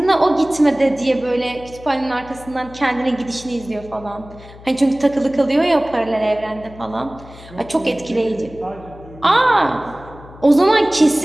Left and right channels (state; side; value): noise; left; hum, 19 dB below the sound